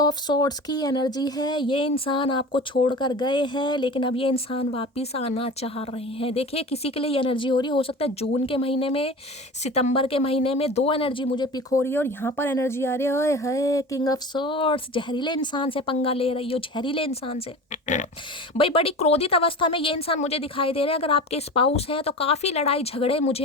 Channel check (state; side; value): normal; both; correlation 0.34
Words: स्वॉर्ड्स की एनर्जी है। ये इंसान आपको छोड़कर गए हैं, लेकिन अब ये इंसान वापस आना चाह रहे हैं। देखिए किसी के लिए ये एनर्जी हो रही है, हो सकता है जून के महीने में, सितंबर के महीने में। 2 एनर्जी मुझे पिक हो रही है, और यहाँ पर एनर्जी आ रही है किंग ऑफ स्वॉर्ड्स। जहरीले इंसान से पंगा ले रही हो, जहरीले इंसान से भाई। बड़ी क्रोधित अवस्था में ये इंसान मुझे दिखाई दे रहे हैं। अगर आपके स्पाउस हैं तो काफ़ी लड़ाई झगड़े मुझे